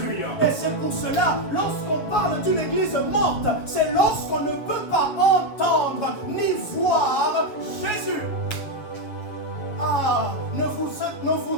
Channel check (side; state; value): right; late; 7.2 ms